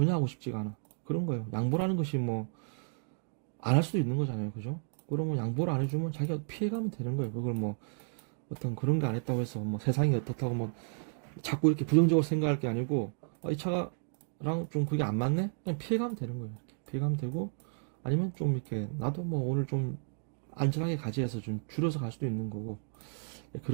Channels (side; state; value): left; silent; 56 dB below the other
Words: 하고 싶지가 않아. 그런 거예요. 양보라는 것이 뭐 안 할 수도 있는 거잖아요. 그죠? 그러면 양보를 안 해주면 자기가 피해가면 되는 거예요. 그걸 뭐 어떤 그런 게 안 했다고 해서 뭐 세상이 어떻다고 뭐 자꾸 이렇게 부정적으로 생각할 게 아니고 이 차가랑 좀 그게 안 맞네? 그냥 피해가면 되는 거예요. 이렇게 피해가면 되고 아니면 좀 이렇게 나도 뭐 오늘 좀 안전하게 가지 해서 좀 줄여서 갈 수도 있는 거고